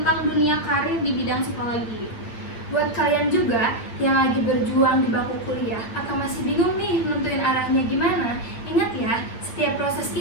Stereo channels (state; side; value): late; right; 8.8 ms